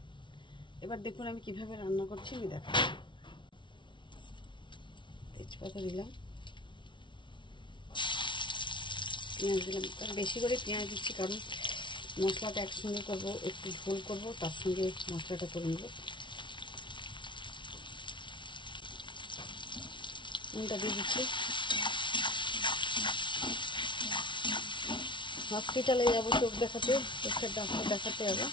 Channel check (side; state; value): right; late; 0.24 ms